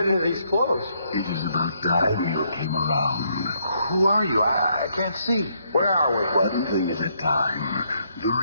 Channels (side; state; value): both; inverted; correlation -0.73